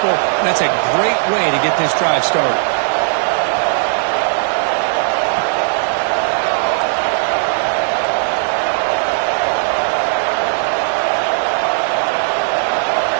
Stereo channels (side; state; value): left; silent; 69 dB below the other